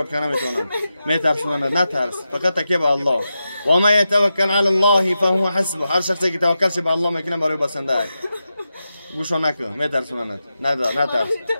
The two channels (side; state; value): both; inverted; correlation -0.90